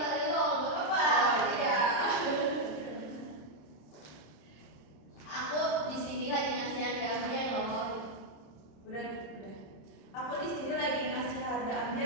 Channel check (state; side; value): late; right; 26 ms